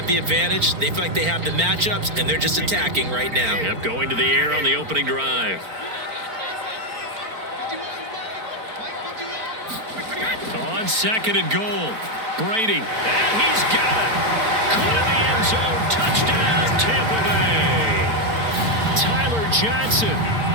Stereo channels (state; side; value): late; left; 4.4 ms